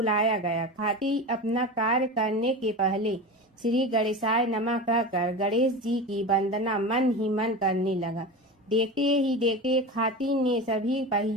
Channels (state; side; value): normal; both; correlation 0.27